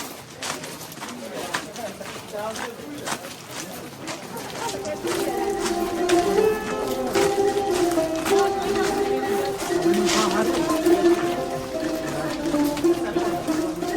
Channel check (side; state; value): both; identical; correlation 1.00